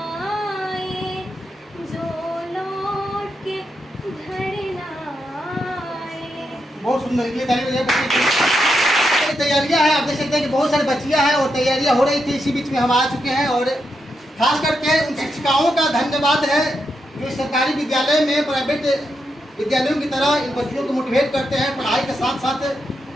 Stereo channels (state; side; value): normal; both; correlation 0.84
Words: आए, जो लौट के घर ना आए। बहुत सुंदर तैयारियां हैं, आप देख सकते हैं कि बहुत सारी बच्चियां हैं और तैयारियां हो रही थी। इसी बीच में हम आ चुके हैं और खास करके उन शिक्षिकाओं का धन्यवाद है जो सरकारी विद्यालय में प्राइवेट विद्यालयों की तरह इन बच्चियों को मोटिवेट करते हैं, पढ़ाई के साथ साथ